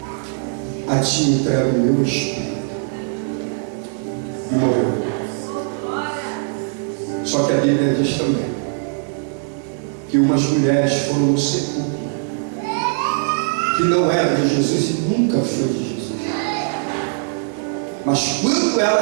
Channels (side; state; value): left; silent; 56 dB below the other